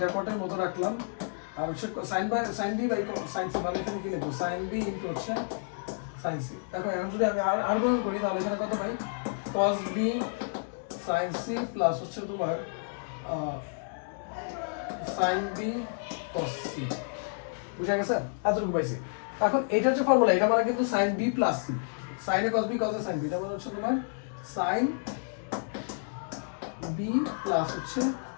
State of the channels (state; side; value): silent; right; digital silence